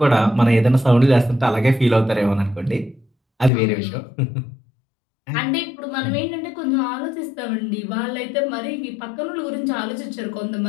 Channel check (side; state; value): right; drops out; at 3.5 s